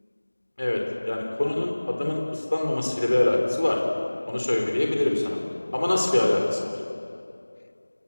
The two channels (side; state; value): both; inverted; correlation -1.00